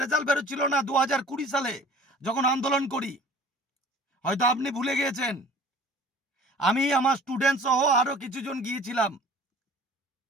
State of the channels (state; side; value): normal; both; correlation 0.47